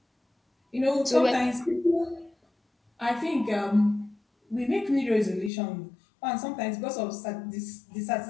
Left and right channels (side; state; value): right; drops out; at 5.5 s